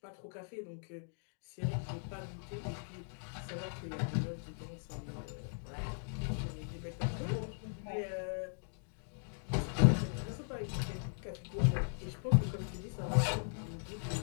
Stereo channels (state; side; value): silent; right; digital silence